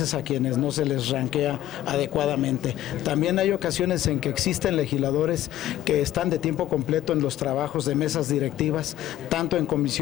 a quienes no se les ranquea adecuadamente. También hay ocasiones en que existen legisladores que están de tiempo completo en los trabajos de mesas directivas, tanto en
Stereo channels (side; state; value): right; quieter; 13.4 dB